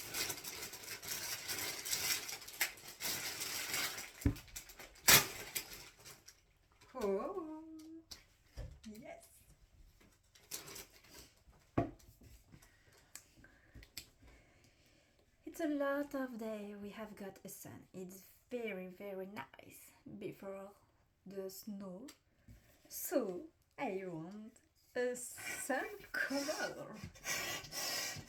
Oh, yes. It's a lot of day we have got a sun. It's very nice before the snow. So I want a sun color.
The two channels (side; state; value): both; identical; correlation 1.00